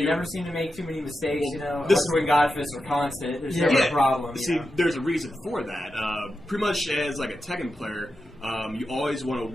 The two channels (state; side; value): normal; both; correlation 0.89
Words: never seem to make too many mistakes. You know, when Godfists are constant, there's never a problem. See, there's a reason for that. Pretty much as like a Tekken player, you always want